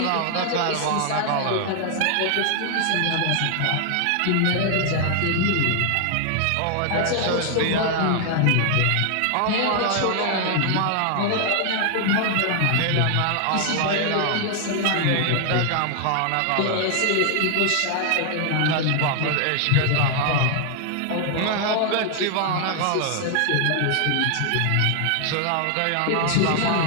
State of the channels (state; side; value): different; both; correlation 0.00